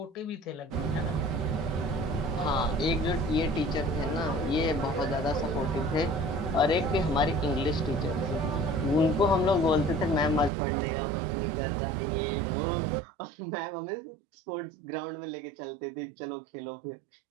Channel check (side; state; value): left; drops out; at 10.5 s